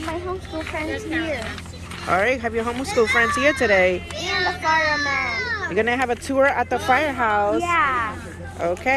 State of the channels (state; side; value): identical; both; correlation 1.00